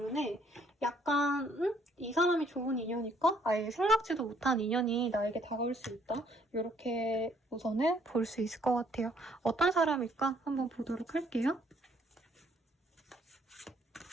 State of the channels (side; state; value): both; normal; correlation 0.65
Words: 약간 이 사람이 좋은 인연일까? 아예 생각지도 못한 인연이 나에게 다가올 수 있다. 이렇게 우선은 볼 수 있을 것 같아요. 어떤 사람일까? 한번 보도록 할게요.